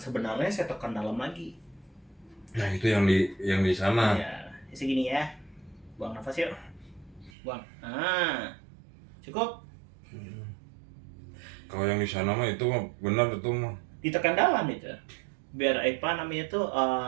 saya tekan dalam lagi. Nah itu yang di sana. Ya, segini ya. Buang nafas yuk. Buang. Cukup. Kalau yang di sana mah itu mah benar itu mah. Ditekan dalam itu. Biar apa namanya tuh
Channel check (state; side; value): drops out; left; at 7.3 s